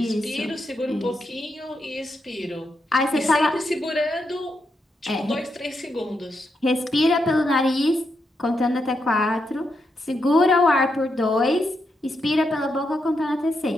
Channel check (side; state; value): both; normal; correlation 0.83